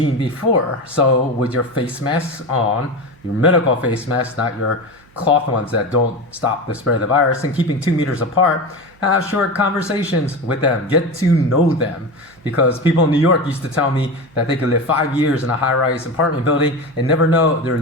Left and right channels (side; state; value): right; noise; hum, 29 dB below the sound